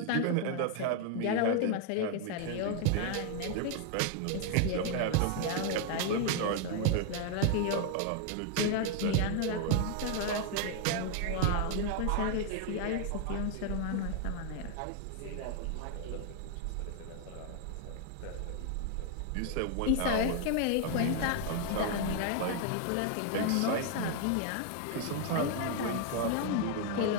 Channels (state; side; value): different; both; correlation 0.00